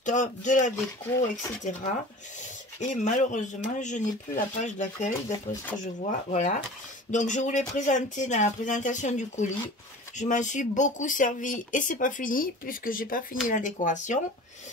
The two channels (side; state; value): both; normal; correlation 0.39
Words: de la déco, etc. Et malheureusement, je n'ai plus la page d'accueil, d'après ce que je vois. Voilà. Donc, je vous l'ai présenté dans la présentation du colis. Je m'en suis beaucoup servi et c'est pas fini puisque j'ai pas fini la décoration.